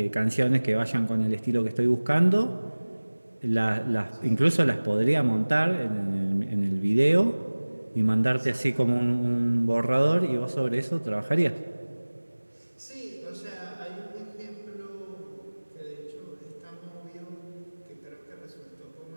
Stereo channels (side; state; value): both; inverted; correlation -1.00